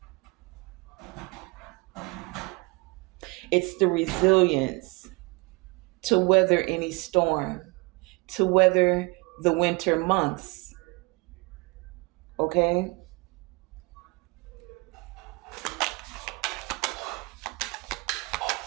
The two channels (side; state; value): left; quieter; 26.9 dB